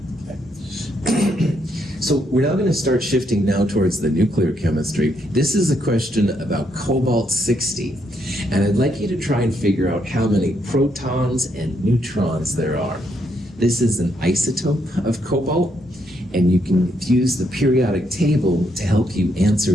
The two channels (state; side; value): normal; both; correlation 0.76